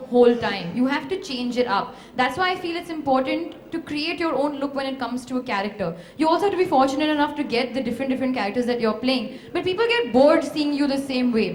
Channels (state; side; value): identical; both; correlation 1.00